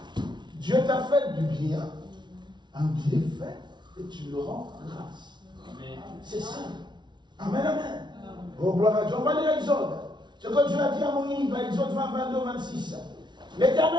Dieu t'a fait du bien, un bienfait, et tu le rends grâce. C'est ça. Amen, amen. Oh, gloire à Dieu. On va lire Exode. Ce que Dieu a dit à Moïse, dans Exode 20, 22, 26.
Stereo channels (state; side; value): late; left; 0.22 ms